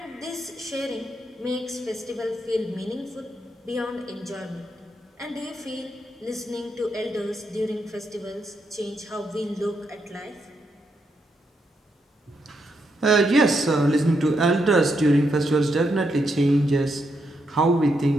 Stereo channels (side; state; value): both; normal; correlation 0.80